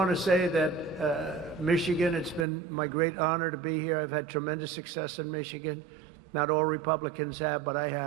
to say that Michigan, it's been my great honor to be here. I've had tremendous success in Michigan. Not all Republicans have, but I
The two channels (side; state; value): left; drops out; at 2.5 s